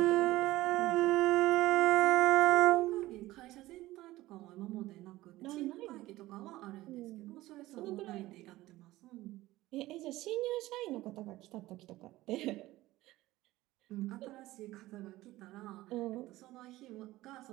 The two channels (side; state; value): left; quieter; 17.3 dB